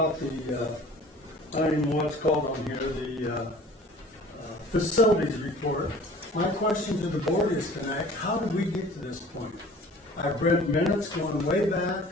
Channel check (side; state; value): both; normal; correlation 0.47